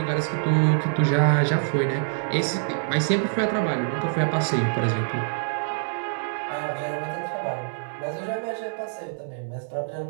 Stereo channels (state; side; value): silent; left; 61 dB below the other